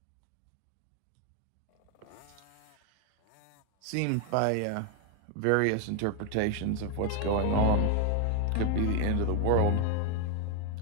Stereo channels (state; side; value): different; both; correlation 0.01